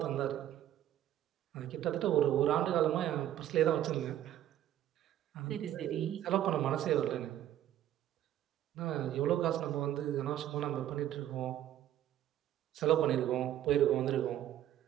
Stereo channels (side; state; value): left; quieter; 12.0 dB